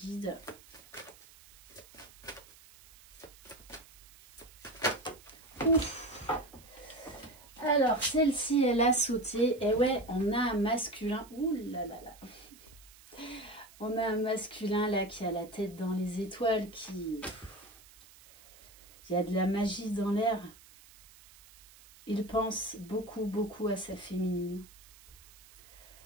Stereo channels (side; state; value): right; noise; hiss, 22 dB below the sound